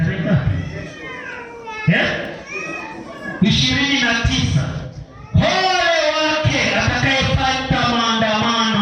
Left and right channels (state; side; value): identical; both; correlation 1.00